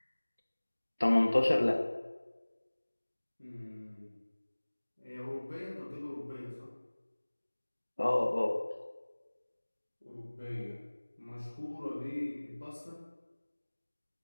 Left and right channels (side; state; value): both; inverted; correlation -1.00